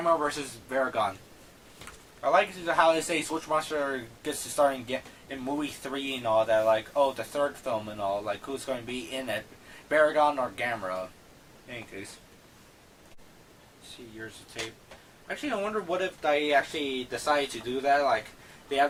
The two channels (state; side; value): identical; both; correlation 1.00